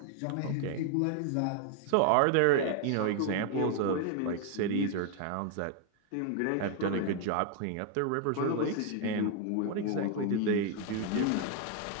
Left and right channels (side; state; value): both; different; correlation 0.00